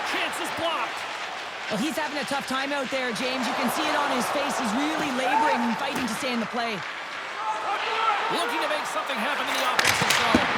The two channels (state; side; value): identical; both; correlation 1.00